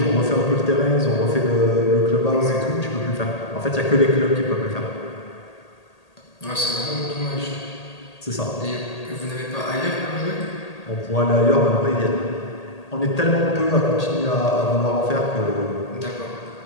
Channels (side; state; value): right; late; 1.8 ms